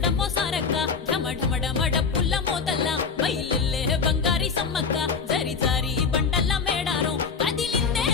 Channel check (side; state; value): right; quieter; 5.5 dB